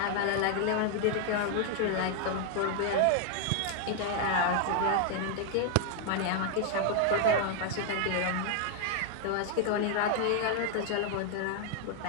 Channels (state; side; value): different; both; correlation 0.00